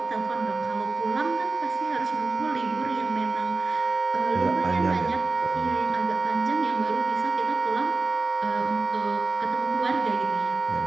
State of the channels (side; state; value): left; quieter; 3.7 dB